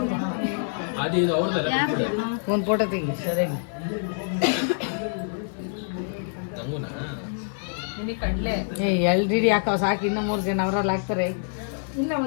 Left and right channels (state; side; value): silent; right; digital silence